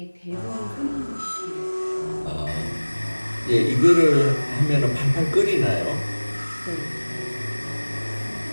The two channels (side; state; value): both; inverted; correlation -1.00